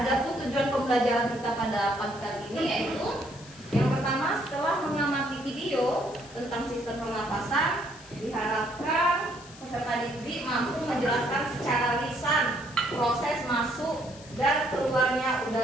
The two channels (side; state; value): left; noise; hiss, 20 dB below the sound